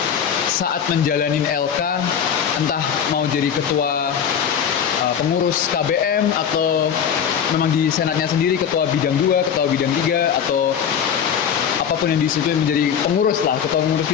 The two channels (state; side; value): quieter; right; 8.0 dB